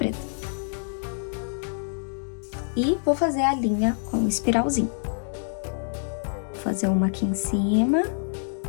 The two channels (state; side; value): silent; right; digital silence